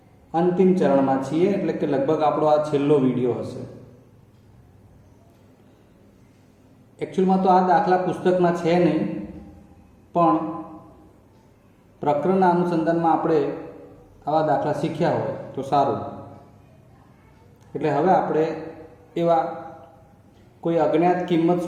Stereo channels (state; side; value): identical; both; correlation 1.00